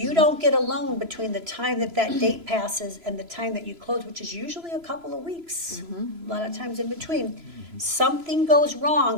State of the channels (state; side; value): late; left; 3.0 ms